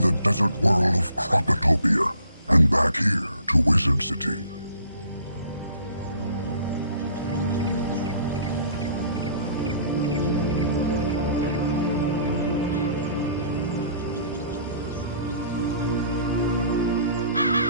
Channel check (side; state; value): both; inverted; correlation -0.54